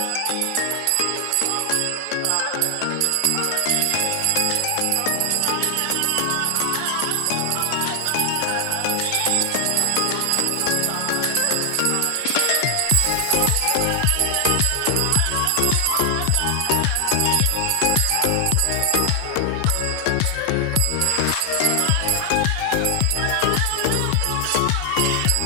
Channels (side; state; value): both; different; correlation 0.00